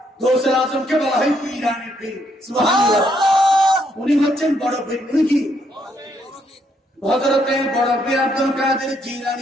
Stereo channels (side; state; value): both; normal; correlation 0.73